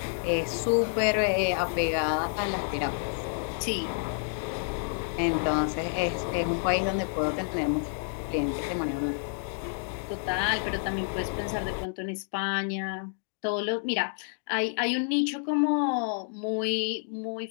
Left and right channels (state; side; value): silent; right; digital silence